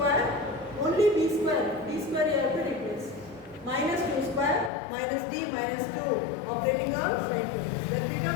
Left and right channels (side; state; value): right; drops out; at 4.7 s